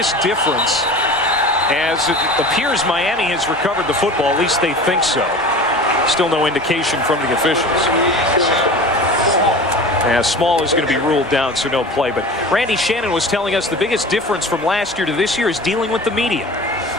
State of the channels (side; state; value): both; normal; correlation 0.36